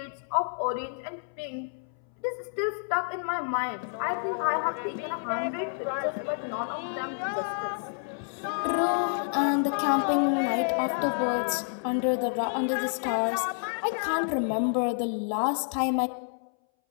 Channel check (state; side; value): silent; right; 59 dB below the other